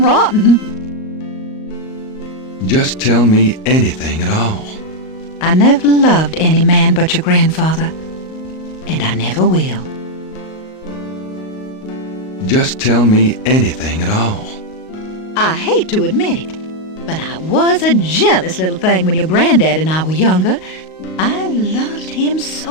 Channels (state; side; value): late; right; 38 ms